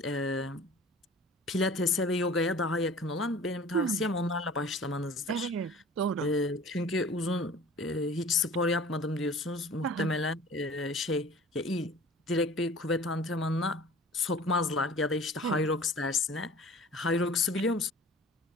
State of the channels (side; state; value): both; normal; correlation 0.44